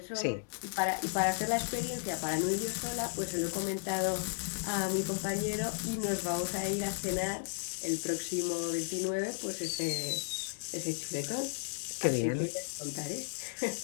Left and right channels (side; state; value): right; silent; digital silence